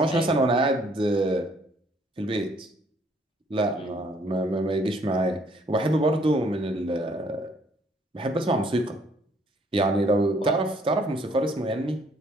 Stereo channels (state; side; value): normal; both; correlation 0.64